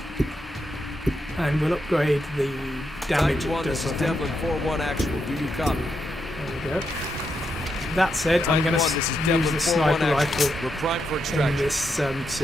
And we'll upgrade the damage it does, I think. Devlin 4-1 actual. Do you copy? There we go. That said, I'm going to use the sniper rifle We're primed for in extraction. this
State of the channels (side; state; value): both; normal; correlation 0.82